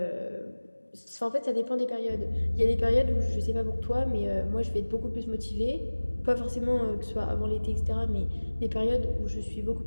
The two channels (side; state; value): both; inverted; correlation -1.00